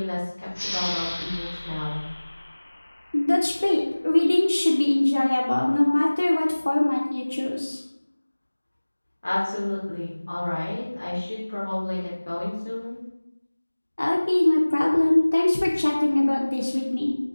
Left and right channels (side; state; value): both; inverted; correlation -1.00